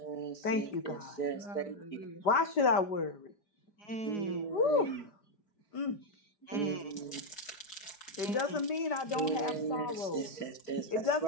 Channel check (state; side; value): late; right; 5.1 ms